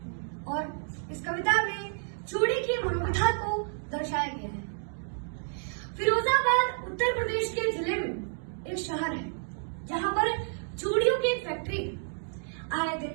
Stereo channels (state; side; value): silent; left; 58 dB below the other